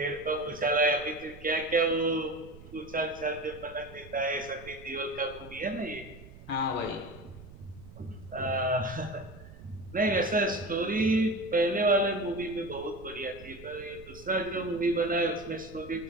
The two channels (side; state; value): right; noise; rumble, 18 dB below the sound